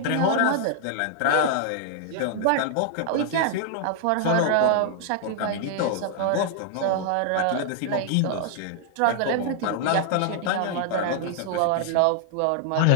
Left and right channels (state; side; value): different; both; correlation -0.01